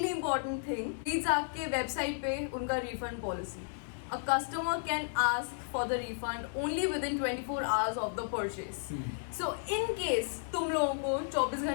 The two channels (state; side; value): silent; right; 55 dB below the other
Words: important thing, please आपके वेबसाइट पे उनका refund policy, a customer can ask for the refund only with in 24 hours of the purchase. So in case तुम लोगों को 24